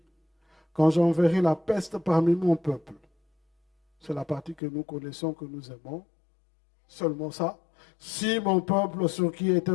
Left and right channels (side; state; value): right; drops out; at 4.6 s